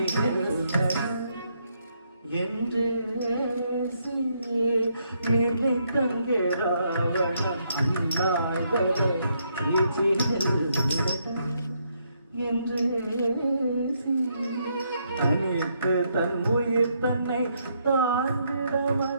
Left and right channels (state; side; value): inverted; both; correlation -0.75